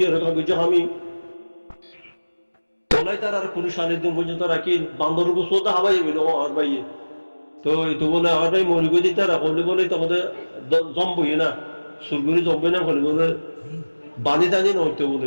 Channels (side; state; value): both; inverted; correlation -1.00